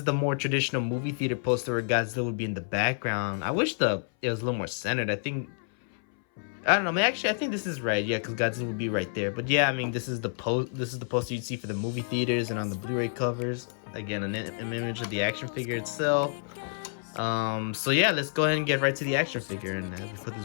the more traditional movie theater poster where Godzilla would be in the background. I wish it was a little more centered. I don't know, man. Actually, I think this is right. Yeah, because Godzilla would be right there. But yeah, I mean, this is the poster you'd see for the movie theaters and on the Blu-ray covers. Again, an image of the action figure itself. So yeah, let's go ahead and get right to the action figure. And as we put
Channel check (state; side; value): silent; right; 59 dB below the other